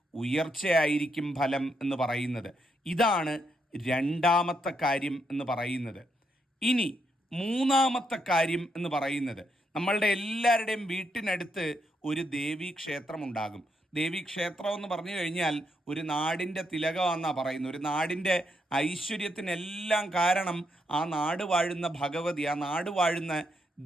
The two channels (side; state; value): both; normal; correlation 0.79